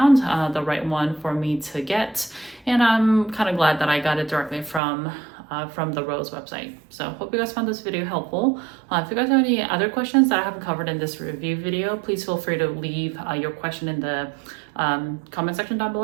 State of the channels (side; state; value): left; drops out; at 4.8 s